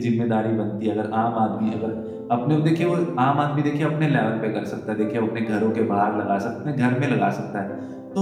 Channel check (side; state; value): both; identical; correlation 1.00